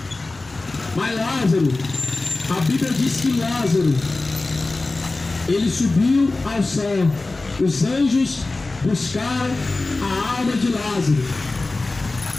Mas Lázaro, a Bíblia diz que Lázaro, ele subiu ao céu. Os anjos buscaram a alma de Lázaro.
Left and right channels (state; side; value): quieter; right; 3.3 dB